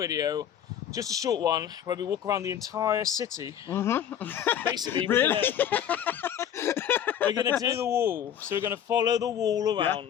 just a short one, where we walk around the entire city. Mm-hmm. Basically, Really? we're going to do the wall. So we're going to follow the wall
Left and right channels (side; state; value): right; quieter; 9.7 dB